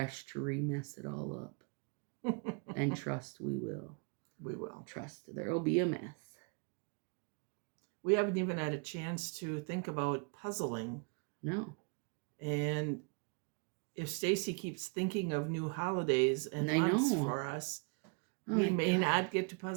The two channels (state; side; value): quieter; left; 35.8 dB